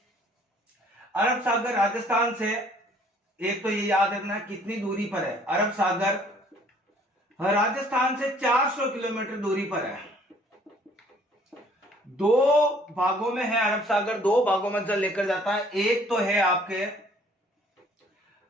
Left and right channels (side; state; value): both; normal; correlation 0.58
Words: अरब सागर राजस्थान से, एक तो ये याद रखना कितनी दूरी पर है। अरब सागर राजस्थान से 400 किलोमीटर दूरी पर है। दो भागों में है अरब सागर, दो भागों में जल लेकर जाता है। एक तो है आपके